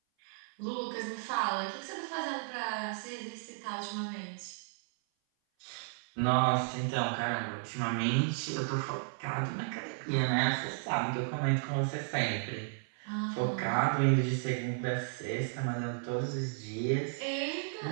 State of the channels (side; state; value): left; silent; 55 dB below the other